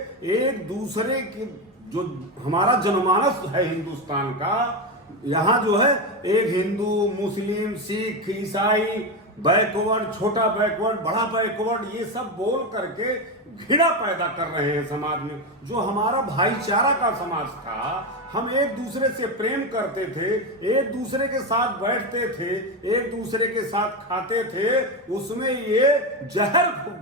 एक दूसरे के, जो हमारा जनमानस है हिंदुस्तान का, यहाँ जो है एक हिंदू, मुस्लिम, सिख, ईसाई, बैकवर्ड, छोटा बैकवर्ड, बड़ा बैकवर्ड, ये सब बोल करके घृणा पैदा कर रहे हैं समाज में। जो हमारा भाईचारा का समाज था, हम एक दूसरे से प्रेम करते थे, एक दूसरे के साथ बैठते थे, एक दूसरे के साथ खाते थे, उसमें ये जहर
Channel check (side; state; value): both; normal; correlation 0.14